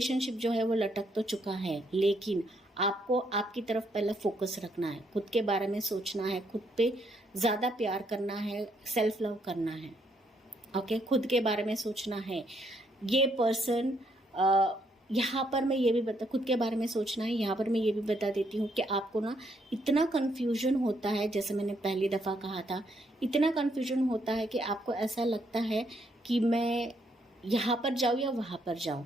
जो है वो लटक तो चुका है, लेकिन आपको आपकी तरफ पहले फोकस रखना है, खुद के बारे में सोचना है, खुद पे ज़्यादा प्यार करना है, सेल्फ लव करना है। ओके, खुद के बारे में सोचना है। ये पर्सन यहाँ पर मैं ये भी खुद के बारे में सोचना है। यहाँ पर मैं ये भी बता देती हूँ कि आपको ना इतना कन्फ्यूजन होता है, जैसे मैंने पहली दफ़ा कहा था, इतना कन्फ्यूजन होता है कि आपको ऐसा लगता है कि मैं यहाँ पर जाऊँ या वहाँ पर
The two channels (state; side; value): normal; both; correlation 0.73